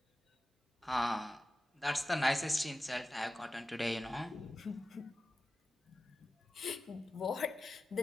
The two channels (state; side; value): normal; both; correlation 0.94